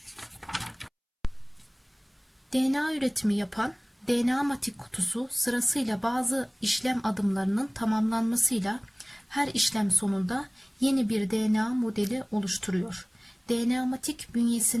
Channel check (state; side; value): identical; both; correlation 1.00